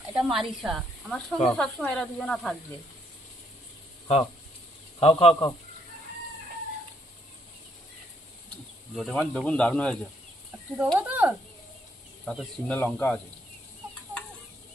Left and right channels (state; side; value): normal; both; correlation 0.71